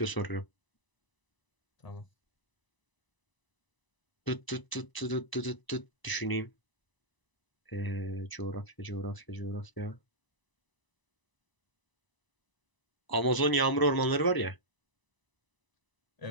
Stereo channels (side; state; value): right; late; 1.0 ms